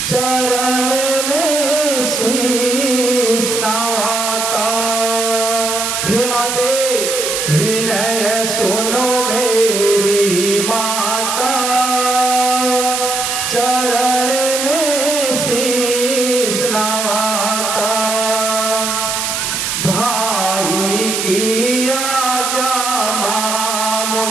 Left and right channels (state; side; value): noise; right; hiss, 1 dB below the sound